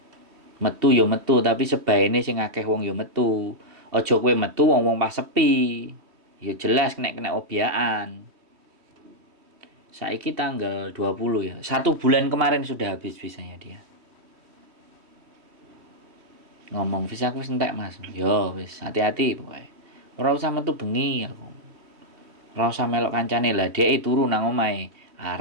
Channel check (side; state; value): left; late; 3.1 ms